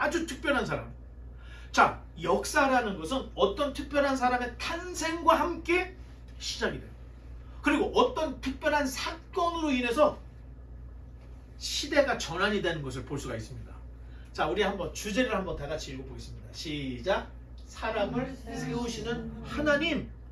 특별한 사람. 자, 역사라는 것은 어떤 특별한 사람의 탄생과 함께 시작이 돼요. 그리고 어떤 특별한 사건으로 인해서 시대가 전환이 되는 것을 볼 수가 있습니다. 자, 우리 한번 주제를 한번 다 같이 읽어보겠습니다. 시작. 사람을 세우시는 하나님.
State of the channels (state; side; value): identical; both; correlation 1.00